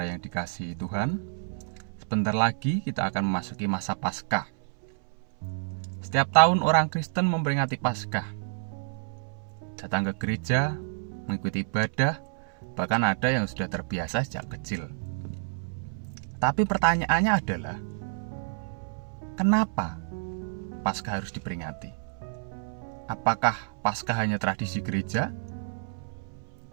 yang dikasihi Tuhan. Sebentar lagi kita akan memasuki masa Paskah. Setiap tahun orang Kristen memperingati Paskah. Datang ke gereja, mengikuti ibadah, bahkan ada yang sudah terbiasa sejak kecil. Tapi pertanyaannya adalah, kenapa Paskah harus diperingati? Apakah Paskah hanya tradisi gereja?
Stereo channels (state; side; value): silent; left; 59 dB below the other